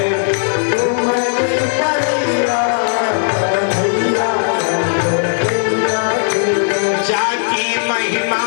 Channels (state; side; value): silent; right; digital silence